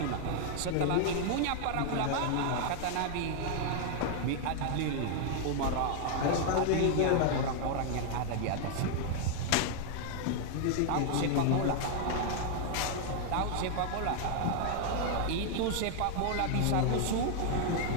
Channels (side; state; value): both; different; correlation 0.00